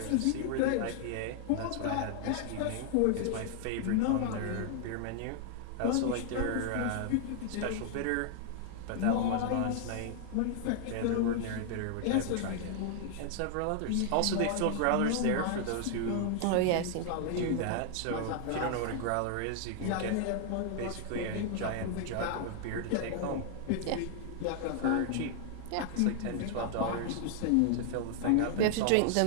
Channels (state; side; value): different; both; correlation 0.00